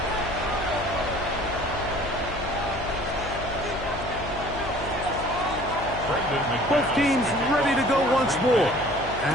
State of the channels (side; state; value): left; noise; hum, 10 dB below the sound